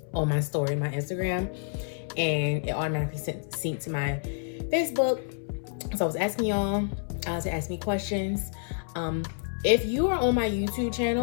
on my story, my Instagram, and it automatically synced to my Facebook. So I was asking y'all to ask me questions. If you are on my YouTube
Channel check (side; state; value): right; silent; 59 dB below the other